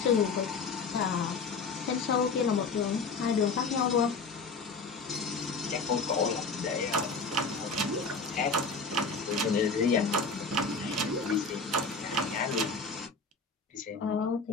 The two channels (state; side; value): quieter; right; 4.2 dB